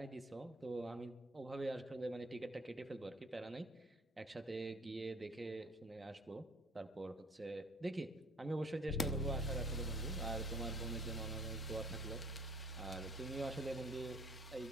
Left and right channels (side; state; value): both; normal; correlation 0.55